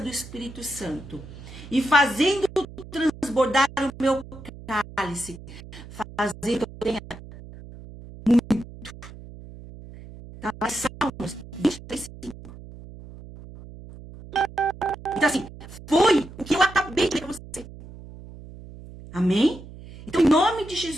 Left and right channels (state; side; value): noise; right; hum, 16 dB below the sound